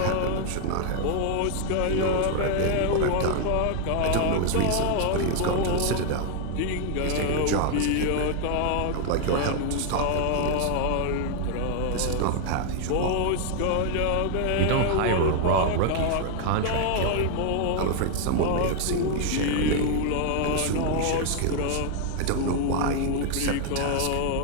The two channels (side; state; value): both; different; correlation 0.00